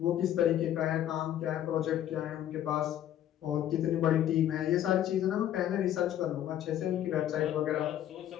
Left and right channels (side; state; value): right; quieter; 11.5 dB